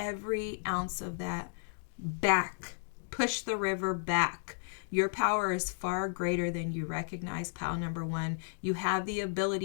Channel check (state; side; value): silent; right; digital silence